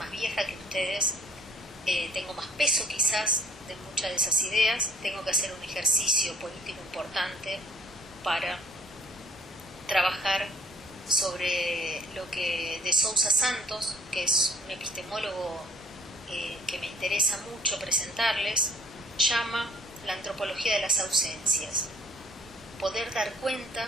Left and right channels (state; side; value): normal; both; correlation 0.57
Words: vieja que ustedes, tengo más peso quizás de muchas de esas ideas, tengo que hacer un ejercicio político importante para trabajar sobre lo que de Sousa Santos, que es un epistemólogo que me interesa mucho presentarles, llama la antropología de las ausencias. Poder dar cuenta